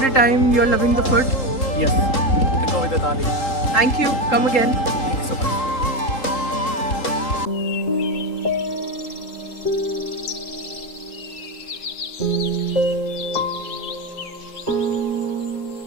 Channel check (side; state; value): right; late; 3.8 ms